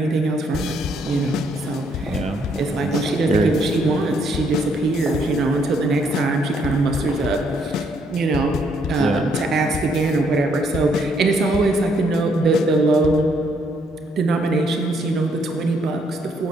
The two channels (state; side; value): normal; both; correlation 0.70